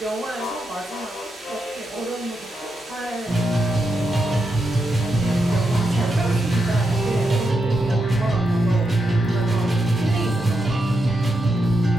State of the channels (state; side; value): normal; both; correlation 0.85